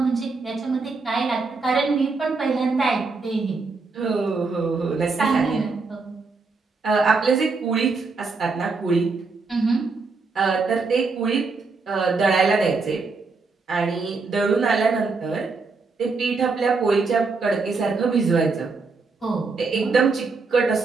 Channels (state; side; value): quieter; left; 4.2 dB